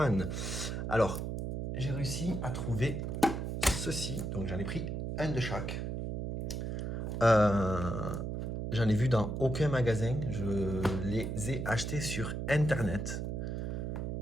Alors, j'ai réussi à trouver ceci, donc j'en ai pris un de chaque. J'en ai vu dans aucun magasin, je les ai achetés sur internet.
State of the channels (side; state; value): right; noise; hum, 3 dB below the sound